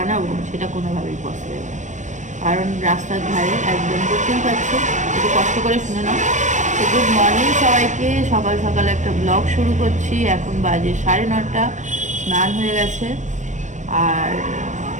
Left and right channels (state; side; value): late; left; 0.35 ms